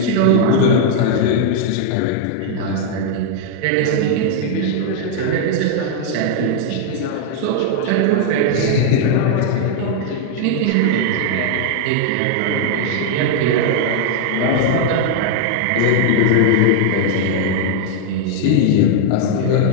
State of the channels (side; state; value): both; different; correlation -0.01